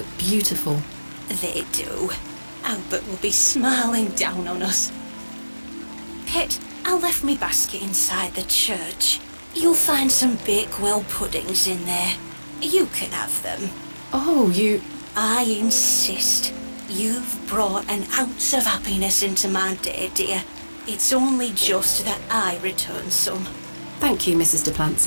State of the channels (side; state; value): both; inverted; correlation -1.00